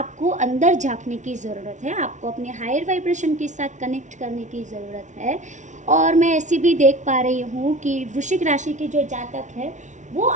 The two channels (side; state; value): left; late; 0.36 ms